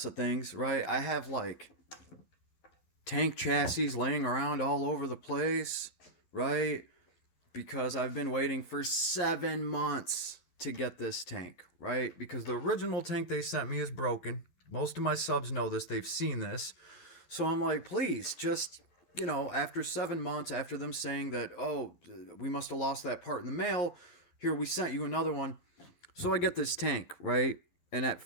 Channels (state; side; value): late; right; 12 ms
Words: of things, right? I have like tank chassis laying around all over the place, right? Because I've been waiting for 7 months to get this tank, right? Because the original tank they sent me is broken. Most of my subs know this, they've seen this. So I'm like, please, just, after 7 months, after them saying that, oh, we must have lost that part in the mail, here, we sent you another one. So I get this tank, right? And at